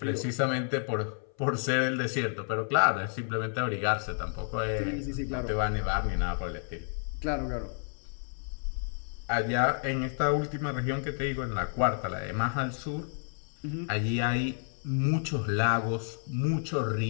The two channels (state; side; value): silent; right; 57 dB below the other